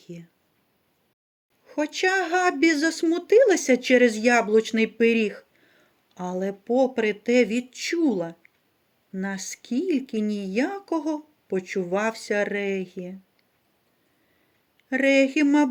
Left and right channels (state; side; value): identical; both; correlation 1.00